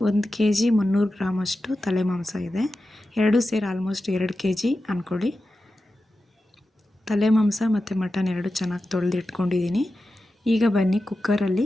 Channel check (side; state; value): both; normal; correlation 0.92